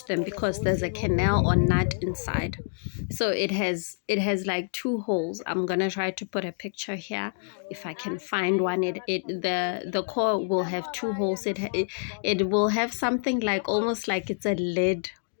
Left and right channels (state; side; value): silent; right; digital silence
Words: them, because there's a canal or nut inside. So it has like two holes. I'm gonna try to put a picture here if I can find one. The core will have two holes. It will have something like almost like it's a lid